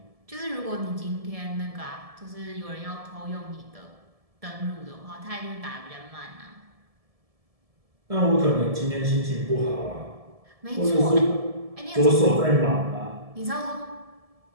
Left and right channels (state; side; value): late; left; 1.7 ms